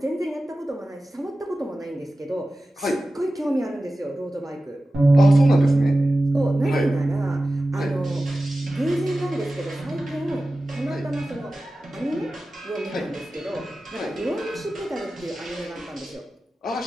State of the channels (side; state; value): both; normal; correlation 0.95